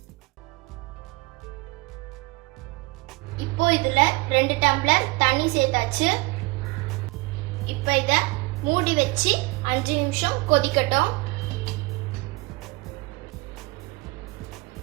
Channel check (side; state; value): left; quieter; 24.2 dB